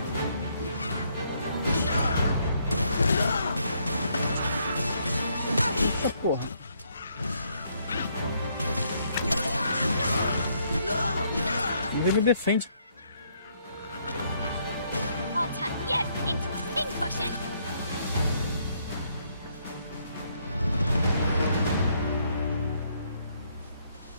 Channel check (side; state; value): both; inverted; correlation -0.71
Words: Eita porra. Ninguém me defende. I'll turn you into a pincushion.